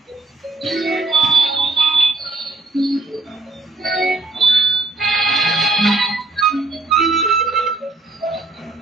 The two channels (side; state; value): left; quieter; 3.1 dB